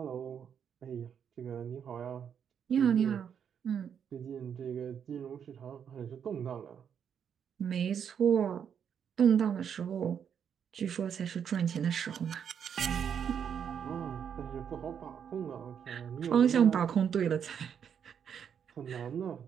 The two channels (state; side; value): quieter; left; 7.9 dB